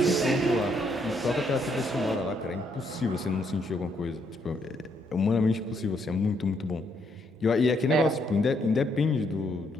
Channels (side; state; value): both; normal; correlation 0.73